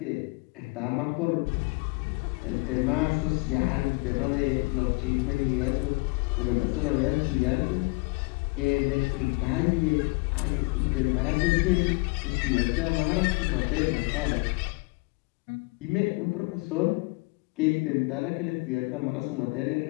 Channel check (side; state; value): right; quieter; 27.7 dB